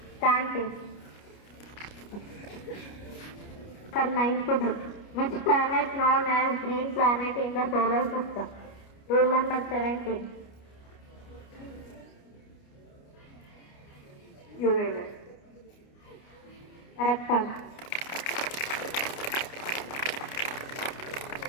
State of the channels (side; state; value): right; late; 29 ms